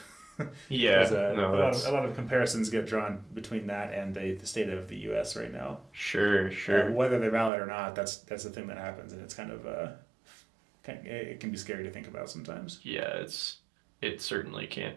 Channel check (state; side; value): drops out; left; at 7.5 s